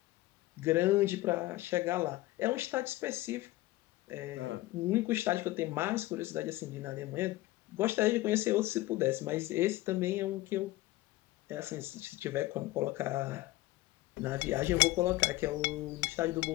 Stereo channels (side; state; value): right; quieter; 17.9 dB